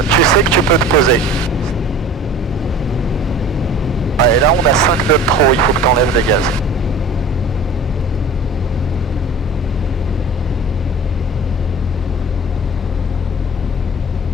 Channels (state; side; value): normal; both; correlation 0.42